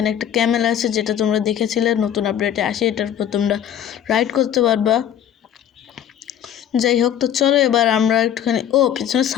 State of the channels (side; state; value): right; quieter; 10.0 dB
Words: একটা ক্যামেল আছে, যেটা তোমরা দেখেছিলে নতুন আপডেটে আসে। এটার উপর তোমরা রাইড করতে পারবা। যাই হোক, তো চলো এবার আমরা একটুখানি পিছনে